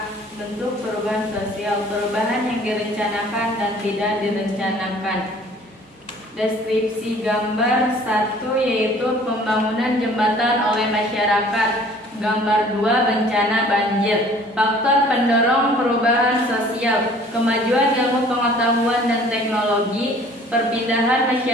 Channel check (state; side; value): normal; both; correlation 0.52